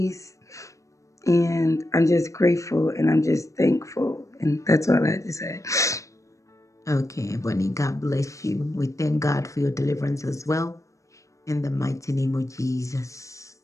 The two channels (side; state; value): right; late; 0.15 ms